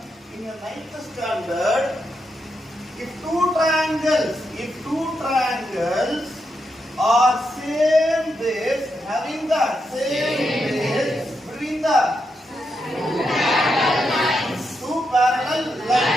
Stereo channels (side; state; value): both; normal; correlation 0.83